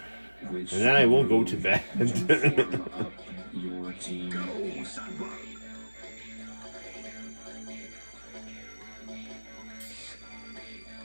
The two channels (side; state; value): both; inverted; correlation -1.00